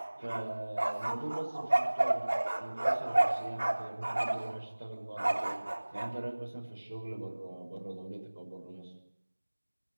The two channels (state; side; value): inverted; both; correlation -1.00